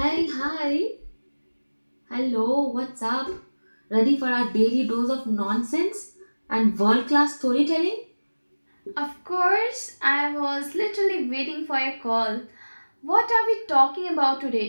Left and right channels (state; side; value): inverted; both; correlation -1.00